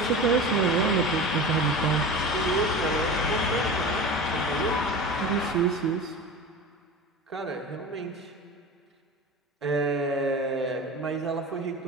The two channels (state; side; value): normal; both; correlation 0.31